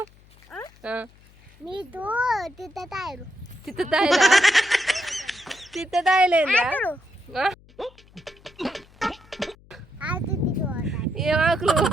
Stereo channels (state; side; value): noise; left; hum, 27 dB below the sound